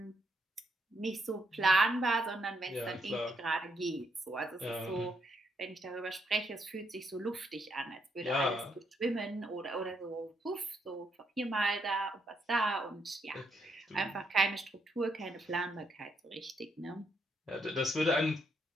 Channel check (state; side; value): normal; both; correlation 0.76